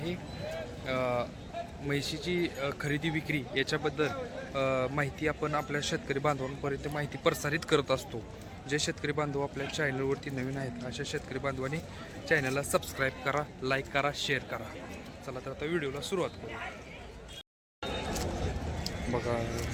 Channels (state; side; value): identical; both; correlation 1.00